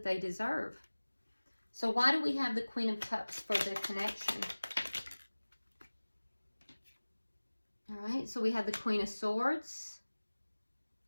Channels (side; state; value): both; inverted; correlation -1.00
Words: they deserve. So why do we have the Queen of Cups for the connection? All right, so we have the Queen of Swords.